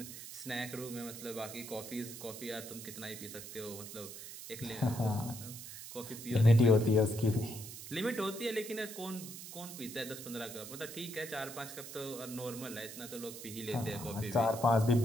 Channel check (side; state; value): right; noise; hiss, 11 dB below the sound